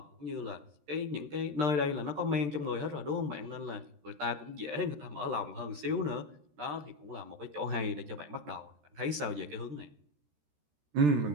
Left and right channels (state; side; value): late; left; 13 ms